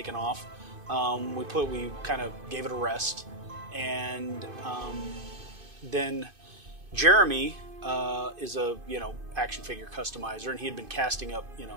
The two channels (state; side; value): late; left; 2.5 ms